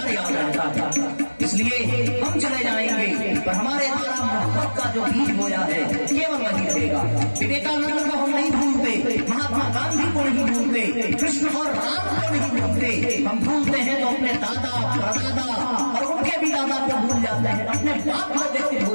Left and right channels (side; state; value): both; inverted; correlation -1.00